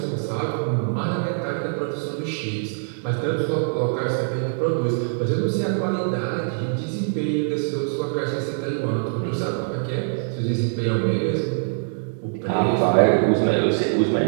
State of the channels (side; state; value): left; silent; digital silence